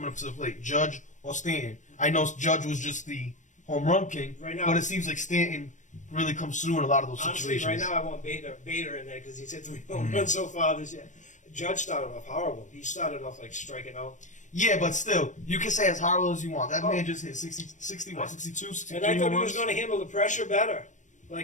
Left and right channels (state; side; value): late; right; 0.36 ms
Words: up to the plate, Judge or Stanton? I know Judge was just the home run king, Right now- but it seems like Stanton really comes through in a lot of those Honestly, situations. right now I want Bader in there because he's hit 3 home runs so far this year. Judge started off horrible. He started off like striking out. Yeah, but still, you can say as horrible as you want. That Oh. man just hit 62, 63 And I thought home he was runs. going to handle the pressure better.